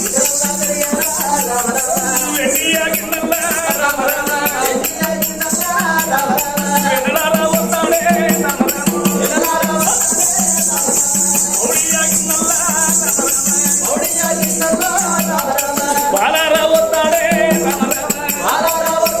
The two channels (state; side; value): noise; left; rumble, 22 dB below the sound